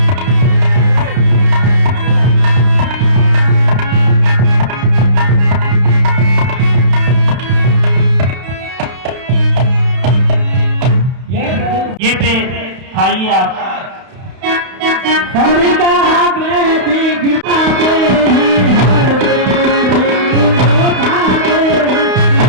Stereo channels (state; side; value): late; left; 31 ms